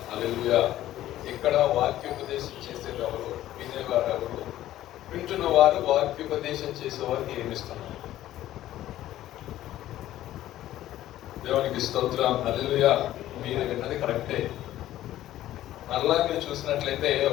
హల్లెలూయా. ఇక్కడ వాక్యోపదేశం చేసేది ఎవరు? వినేవారు ఎవరు? వింటున్న వారు వాక్యోపదేశం చేసేవారికి ఏమిస్తున్నారు? దేవునికి స్తోత్రం. హల్లెలూయా. మీరు విన్నది కరెక్టే. మరలా మీరు చూసినట్లయితే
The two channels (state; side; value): quieter; right; 13.7 dB